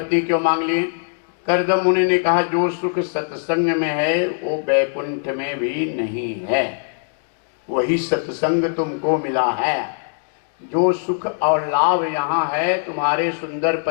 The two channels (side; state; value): right; silent; digital silence